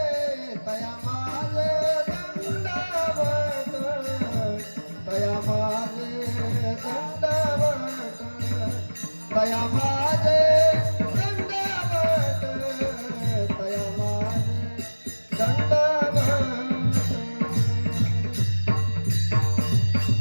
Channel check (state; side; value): inverted; both; correlation -1.00